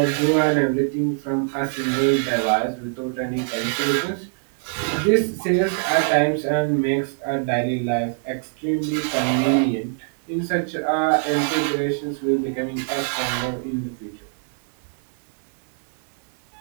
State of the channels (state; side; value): silent; left; digital silence